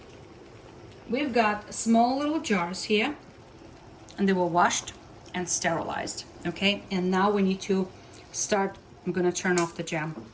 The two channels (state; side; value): identical; both; correlation 1.00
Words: We've got small little jars here, and they were washed and sterilized, okay? And now we need to start. I'm gonna turn off the jam.